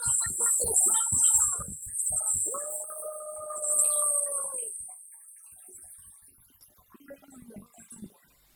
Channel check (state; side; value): identical; both; correlation 1.00